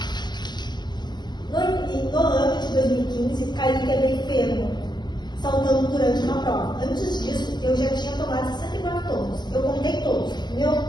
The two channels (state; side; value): late; right; 0.21 ms